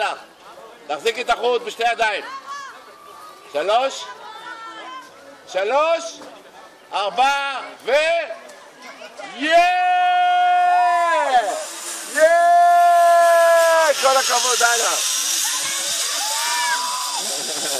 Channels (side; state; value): both; identical; correlation 1.00